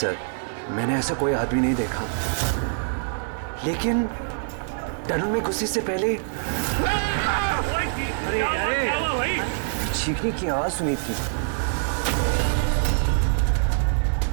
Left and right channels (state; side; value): silent; left; digital silence